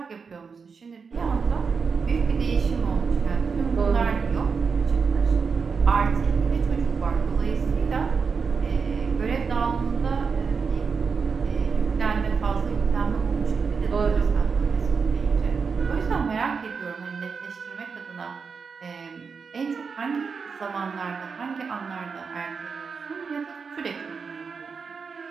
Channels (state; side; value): quieter; left; 5.5 dB